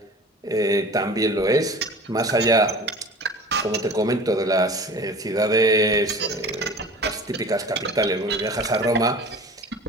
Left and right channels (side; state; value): both; normal; correlation 0.40